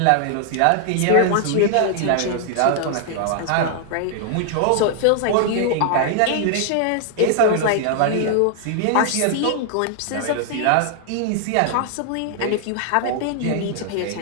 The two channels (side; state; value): both; different; correlation 0.00